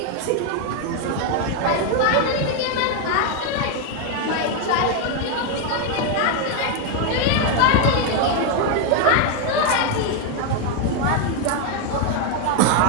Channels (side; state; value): both; different; correlation 0.01